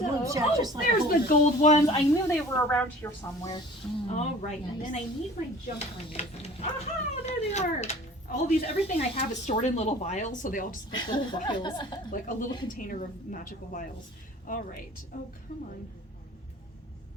chat just like a there's the holder. gold ones. I knew they were around here somewhere. Mm. All right, and then Nice. I need my jump rings. Aha, there they are. All these, everything I have is stored in little vials, so they all just look like little vials, like a little container of magical vials. All right. Oh, come on.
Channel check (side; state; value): both; normal; correlation 0.46